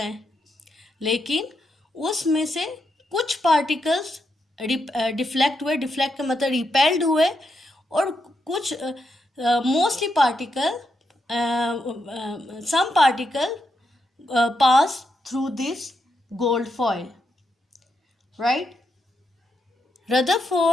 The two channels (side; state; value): both; normal; correlation 0.82